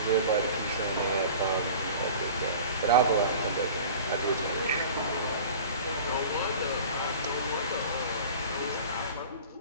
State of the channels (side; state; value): both; inverted; correlation -0.40